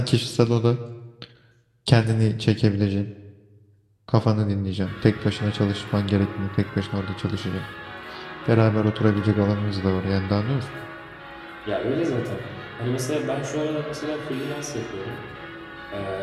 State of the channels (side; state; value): both; identical; correlation 1.00